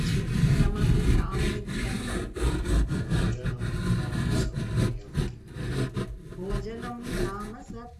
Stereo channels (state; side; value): identical; both; correlation 1.00